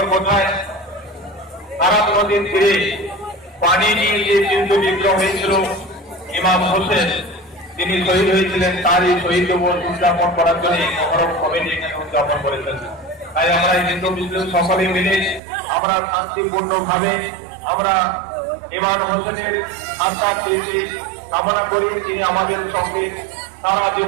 কোথায়? কারাম নদীর তীরে পানি নিয়ে যে যুদ্ধ বিগ্রহ হয়েছিল ইমাম হোসেন, তিনি শহীদ হয়েছিলেন। তারই শহীদ দিবস উদযাপন করার জন্য মহরম কমিটি এখানে উদযাপন করেছেন। তাই আমরা হিন্দু মুসলিম সকলে মিলে আমরা শান্তিপূর্ণ ভাবে আমরা ইমাম হোসেনের আত্মার তৃপ্তি কামনা করি। তিনি আমাদের সঙ্গে সারা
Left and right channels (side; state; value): left; drops out; at 15.4 s